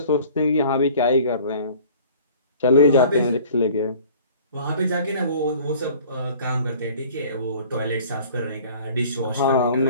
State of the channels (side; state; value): both; inverted; correlation -0.49